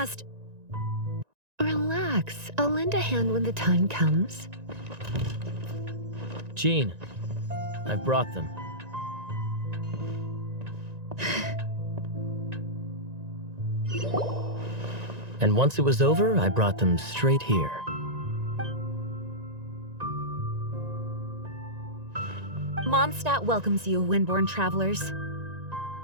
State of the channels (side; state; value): left; late; 1.9 ms